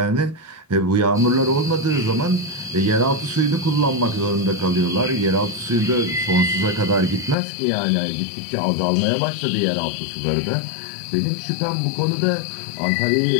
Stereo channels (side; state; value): right; drops out; at 7.4 s